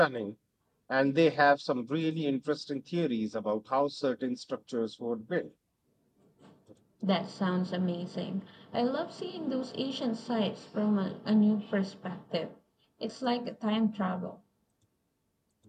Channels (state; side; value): identical; both; correlation 1.00